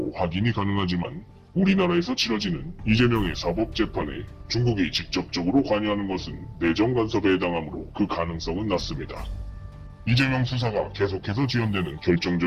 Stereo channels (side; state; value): both; identical; correlation 1.00